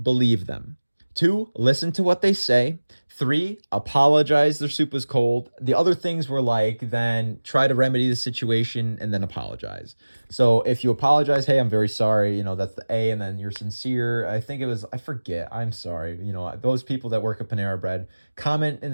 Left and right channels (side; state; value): both; inverted; correlation -1.00